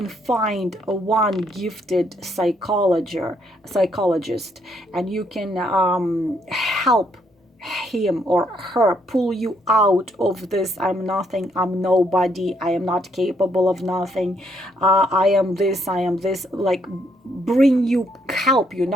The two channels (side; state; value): both; normal; correlation 0.72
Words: find one gifted psychologist, and you can help him or her pull you out of this I'm nothing, I'm nobody, I am not capable of nothing, I am this, like help you